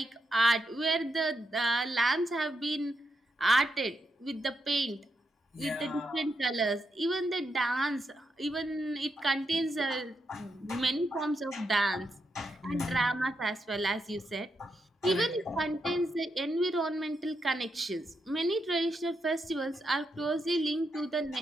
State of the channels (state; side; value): normal; both; correlation 0.83